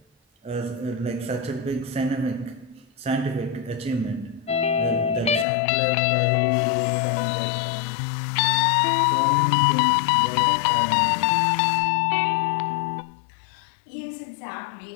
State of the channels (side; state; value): right; drops out; at 5.5 s